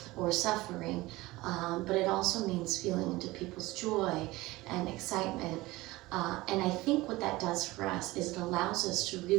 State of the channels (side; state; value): left; quieter; 19.8 dB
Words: or suffering, but it also means feeling into people's joy and excitement. And I think what that does for us is it allows us to